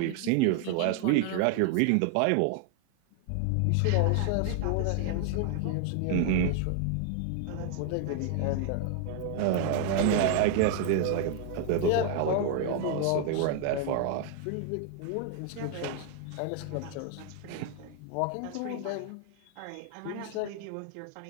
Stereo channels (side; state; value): both; different; correlation 0.00